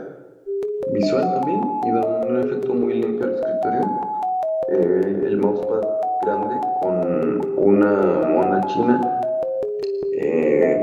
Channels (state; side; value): identical; both; correlation 1.00